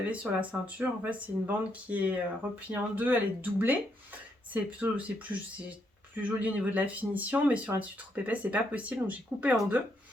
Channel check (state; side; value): normal; both; correlation 0.76